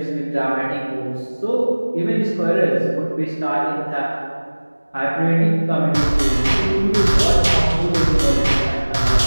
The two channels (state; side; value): inverted; both; correlation -1.00